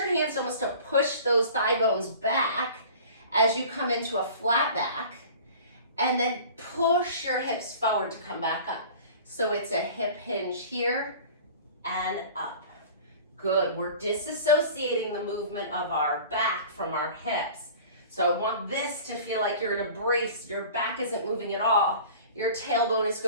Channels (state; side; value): inverted; both; correlation -0.42